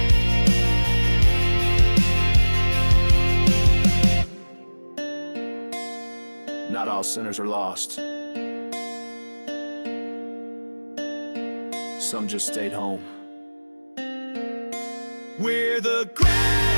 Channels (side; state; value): both; inverted; correlation -1.00